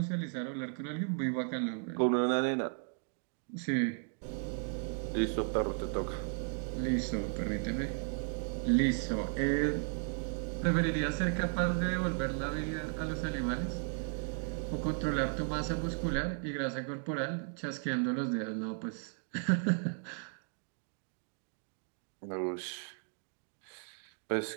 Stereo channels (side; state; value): left; silent; 54 dB below the other